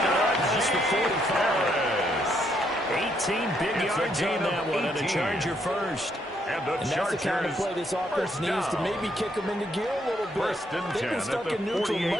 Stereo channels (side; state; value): both; normal; correlation 0.73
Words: it up past the 45. 18 big yards on that one, and a Charger first. And that's the kind of play this offense needs to maybe kick them into gear a little bit. They've been stuck in neutral